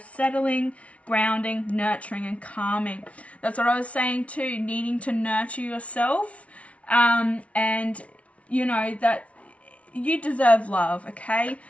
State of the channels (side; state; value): right; late; 0.064 ms